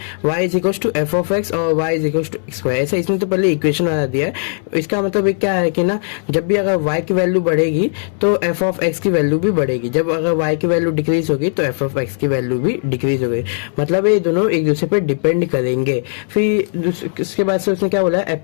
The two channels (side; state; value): right; silent; digital silence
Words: y is equal to F of X और y is equal to X square. ऐसा इसने तो पहले इक्वेशन बना दिया है। इसका मतलब ये क्या है कि ना, जब भी अगर y की वैल्यू बढ़ेगी तो एफ ऑफ एक्स की वैल्यू भी बढ़ेगी, जब अगर y की वैल्यू डिक्रीज होगी तो एफ ऑफ एक्स की वैल्यू भी डिक्रीज होगी। मतलब ये दोनों एक दूसरे पे डिपेंड करेंगे। फिर इसके बाद से उसने क्या बोला,